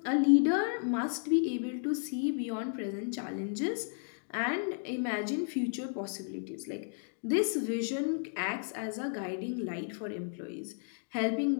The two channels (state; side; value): silent; right; digital silence